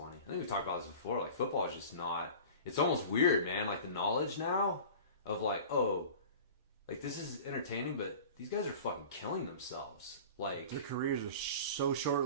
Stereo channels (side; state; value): both; inverted; correlation -0.39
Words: I think we've talked about this before. Like football is just not. It's almost weird, man. Like the knowledge now of like, oh, like this is entertaining, but these guys are fucking killing themselves. Like their careers are so